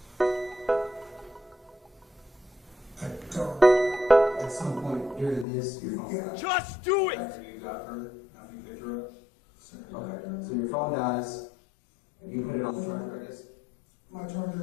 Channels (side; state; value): right; drops out; at 5.5 s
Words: I don't. At some point during this, your phone died. Just do it! After you got her, after you picked her up? Okay, so your phone dies, and you put it on the charger, I guess? My